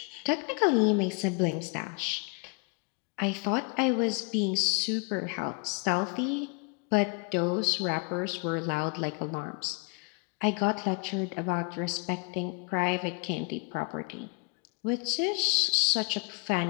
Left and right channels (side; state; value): right; quieter; 30.1 dB